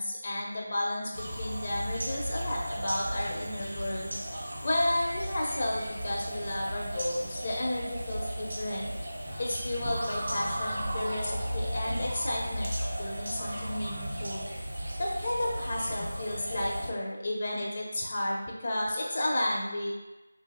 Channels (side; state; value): both; inverted; correlation -0.95